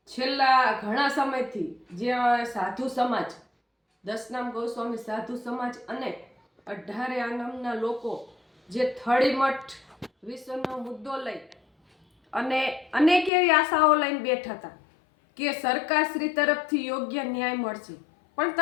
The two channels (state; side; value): drops out; right; at 13.3 s